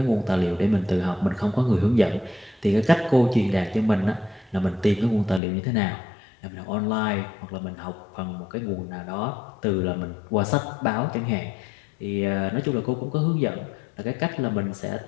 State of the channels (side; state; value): right; drops out; at 5.4 s